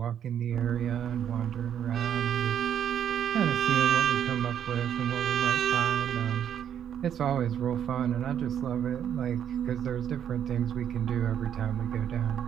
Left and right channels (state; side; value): quieter; left; 9.3 dB